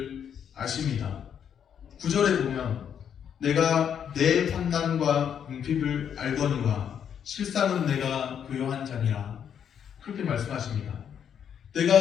아십니다. 9절에 보면 내가 내 환난과 궁핍을 알거니와 실상은 내가 교요한 자니라, 그렇게 말씀하십니다.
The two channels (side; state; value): right; quieter; 8.4 dB